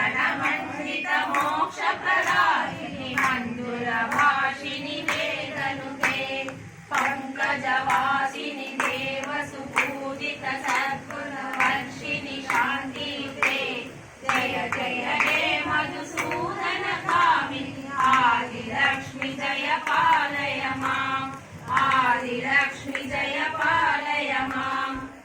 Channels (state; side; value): identical; both; correlation 1.00